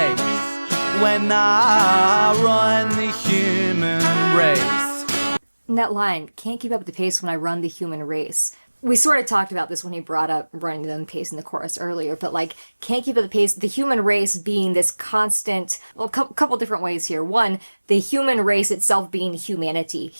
when I run the human race. And that line, can't keep up with the pace when I run the human race. We sort of talked about this when he brought up running the pace in the chorus earlier, but like, can't keep up the pace, the human race being this constant, well, a couple different ways here. One, the human race itself being humanity,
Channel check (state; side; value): inverted; both; correlation -1.00